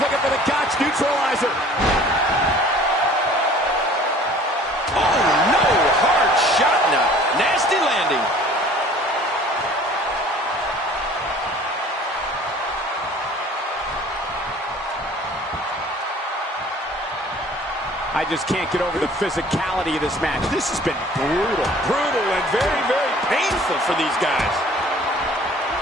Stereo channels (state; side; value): normal; both; correlation 0.50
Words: for the Gotch neutralizer. Oh, no. Hard shot now. Nasty landing. I just can't get over the physicality of this match. This has been brutal. Brutal and very, very painful for these guys.